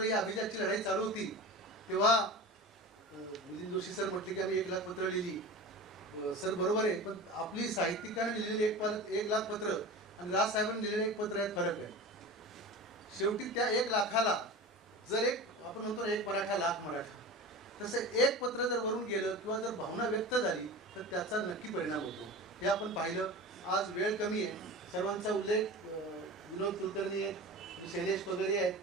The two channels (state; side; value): normal; both; correlation 0.32